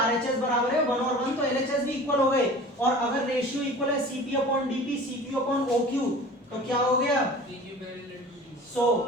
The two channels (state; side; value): normal; both; correlation 0.41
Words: बराबर है 1 और 1 तो LHS भी इक्वल हो गए। और अगर रेशियो इक्वल है CP upon DP, CQ upon OQ, तो क्या हो गया? So